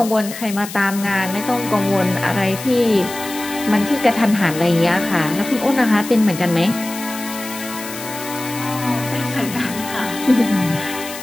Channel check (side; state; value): left; noise; hiss, 11 dB below the sound